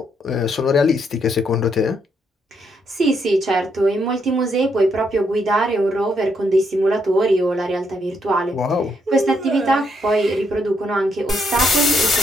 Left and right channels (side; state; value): both; normal; correlation 0.76